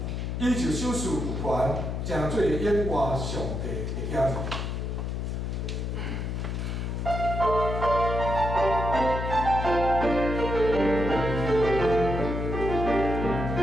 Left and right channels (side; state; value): left; noise; hum, 3 dB below the sound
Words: 伊就手势有权，成做演活上帝的囝。